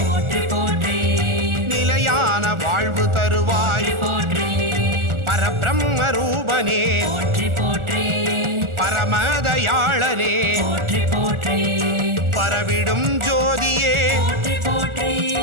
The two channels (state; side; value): late; left; 1.4 ms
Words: போற்றி போற்றி நிலையான வாழ்வு தருவாய் போற்றி பரபிரம்ம ரூபனே போற்றி போற்றி பரமதயாளனே போற்றி போற்றி பரவிடும் ஜோதியே போற்றி போற்றி